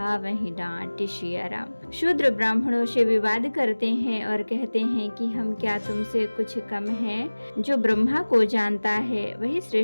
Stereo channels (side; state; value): both; inverted; correlation -1.00